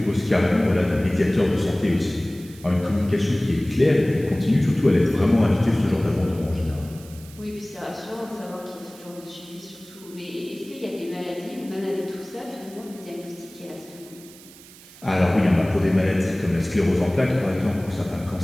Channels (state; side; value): noise; right; hiss, 21 dB below the sound